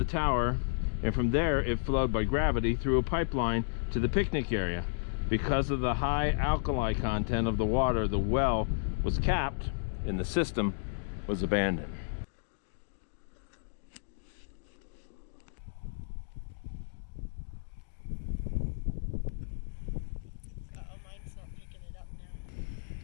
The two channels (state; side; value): silent; right; digital silence